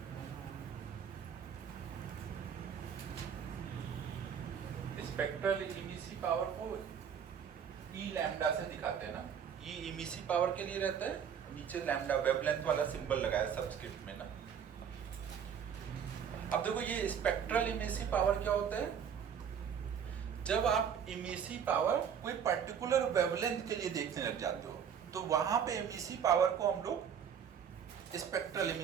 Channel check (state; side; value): quieter; left; 7.8 dB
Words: Spectral emissive power को ई लैम्डा से दिखाते हैं ना। ई इमिसिव पावर के लिए रहता है, नीचे लैम्डा वेवलेंथ वाला सिंबल लगाया सबस्क्रिप्ट में ना। अब देखो ये स्पेक्ट्रल इमिसिव पावर क्या होता है, जब आप इमिसिव पावर कोई पर्टिकुलर वेवलेंथ के लिए देखने लग जाते हो तो वहां पे इमिसिव पावर को हम लोग स्पेक्ट्रल